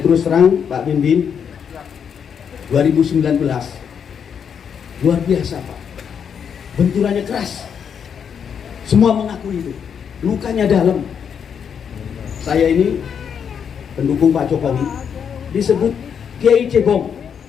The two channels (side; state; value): right; quieter; 7.4 dB